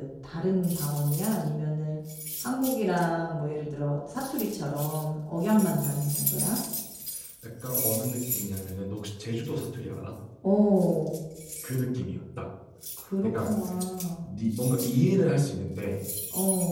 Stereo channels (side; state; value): both; identical; correlation 1.00